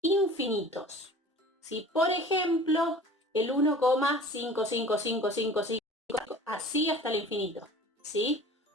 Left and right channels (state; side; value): normal; both; correlation 0.44